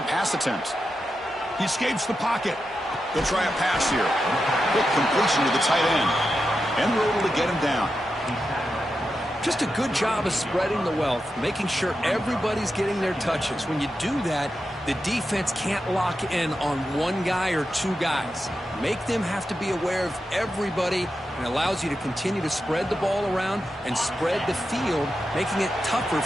pass attempt. He escapes the pocket. They'll try a pass here. Quick completion to the tight end. And we're able to get him down. Just a good job of spreading the wealth, making sure everybody's getting their touches. When you do that, the defense can't lock in on one guy or two guys. Make them have to be aware of everybody, and allows you to continue to spread the ball around and spread the field, making it tougher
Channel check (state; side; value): normal; both; correlation 0.89